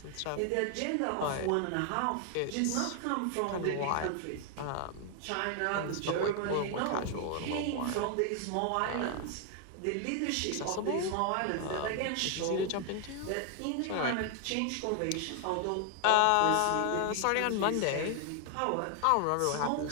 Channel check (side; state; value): both; different; correlation 0.00